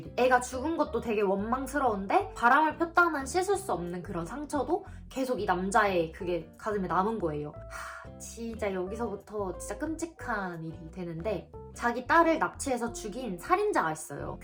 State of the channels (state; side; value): identical; both; correlation 1.00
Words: 애가 죽은 것도 되게 원망스러운데 바람을 폈다는 씻을 수 없는 그런 상처도 계속 이 남자의 그게 가슴에 남은 거예요. 진짜 여기서부터 진짜 끔찍한 일이 되는데 자기 딸을 납치해서 죽인 살인자가 있어요.